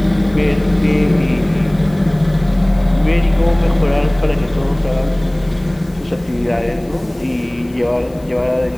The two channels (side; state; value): left; noise; hiss, 27 dB below the sound